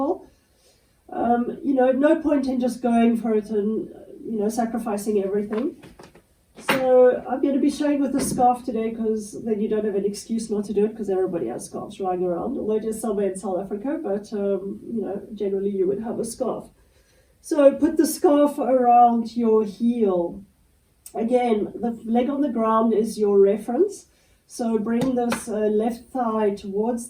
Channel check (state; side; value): identical; both; correlation 1.00